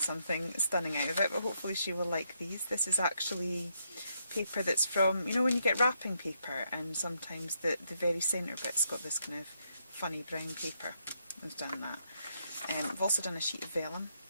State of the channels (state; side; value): inverted; both; correlation -0.76